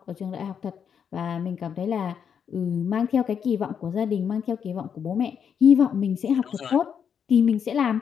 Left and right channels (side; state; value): right; quieter; 7.5 dB